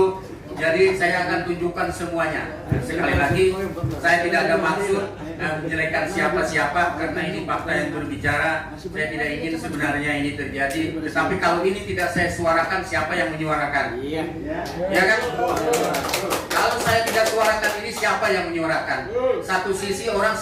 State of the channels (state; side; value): identical; both; correlation 1.00